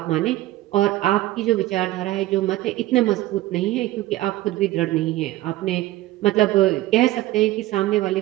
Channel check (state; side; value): quieter; left; 16.4 dB